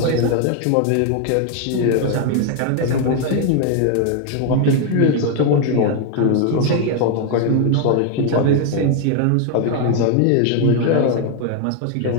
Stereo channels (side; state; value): both; different; correlation 0.01